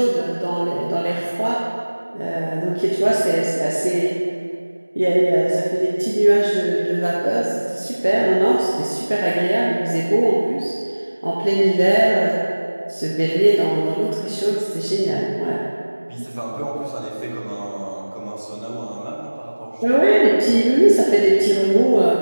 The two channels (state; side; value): inverted; both; correlation -1.00